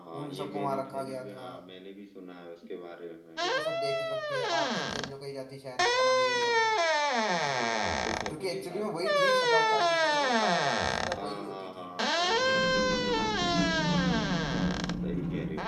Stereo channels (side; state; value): both; identical; correlation 1.00